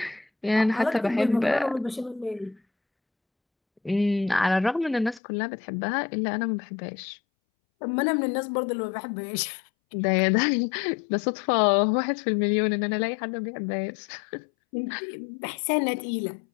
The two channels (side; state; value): right; drops out; at 5.2 s